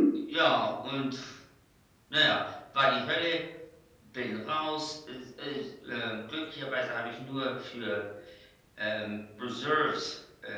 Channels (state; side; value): identical; both; correlation 1.00